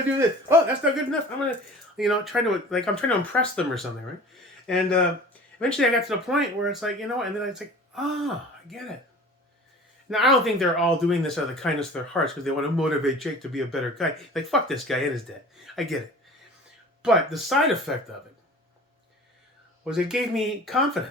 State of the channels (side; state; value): both; normal; correlation 0.42